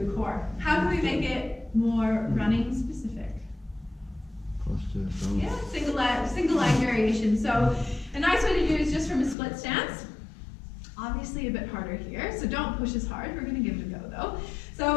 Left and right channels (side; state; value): right; drops out; at 9.3 s